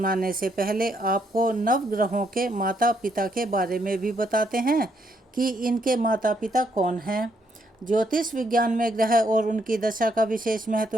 से पहले आपको नवग्रहों के माता पिता के बारे में भी बताते हैं कि इनके माता पिता कौन हैं। ज्योतिष विज्ञान में ग्रह और उनकी दशा का विशेष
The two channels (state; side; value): normal; both; correlation 0.74